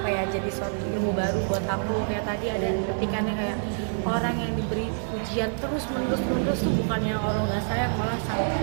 ya jadi suatu ilmu baru buat aku. Kayak tadi ada petikannya kayak orang yang diberi ujian terus menerus tuh bukannya orang nggak sayang, malah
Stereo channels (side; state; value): left; silent; digital silence